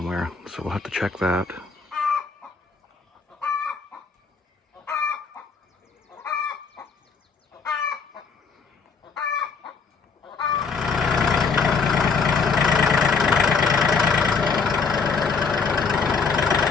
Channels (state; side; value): quieter; right; 5.1 dB